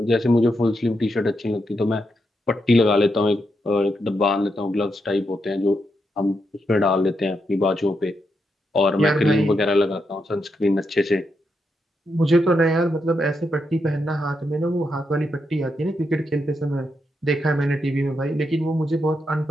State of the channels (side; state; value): both; normal; correlation 0.83